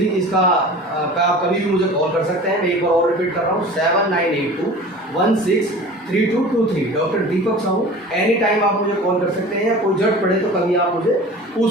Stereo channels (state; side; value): normal; both; correlation 0.39